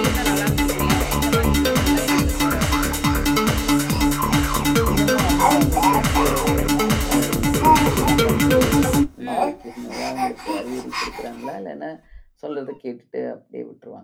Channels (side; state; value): both; identical; correlation 1.00